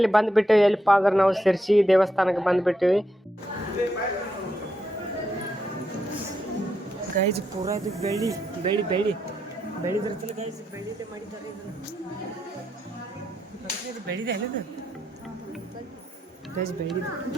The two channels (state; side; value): normal; both; correlation 0.81